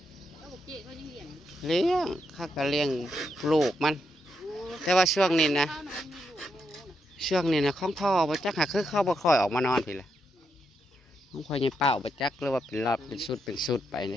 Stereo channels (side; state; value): both; normal; correlation 0.81